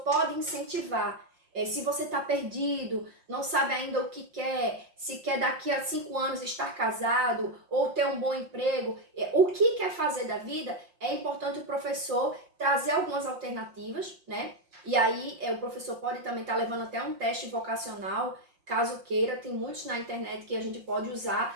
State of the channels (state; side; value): late; left; 5.6 ms